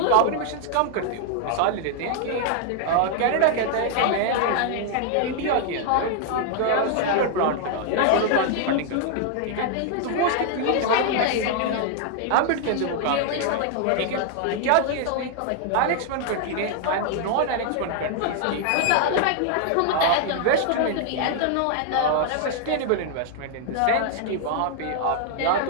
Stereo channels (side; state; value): both; different; correlation 0.00